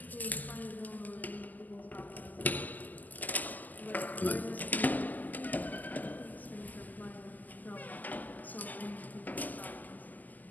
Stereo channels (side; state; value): right; late; 0.083 ms